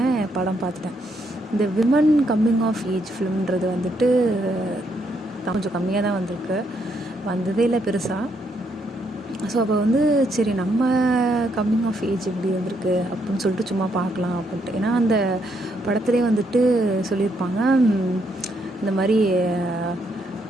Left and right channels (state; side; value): normal; both; correlation 0.75